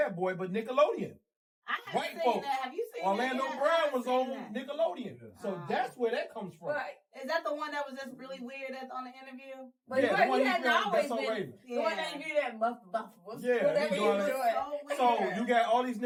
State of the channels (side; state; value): both; identical; correlation 1.00